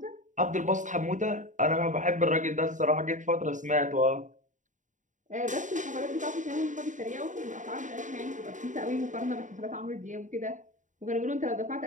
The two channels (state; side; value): late; left; 0.36 ms